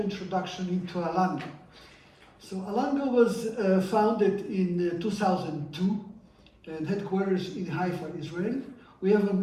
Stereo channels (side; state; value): both; identical; correlation 1.00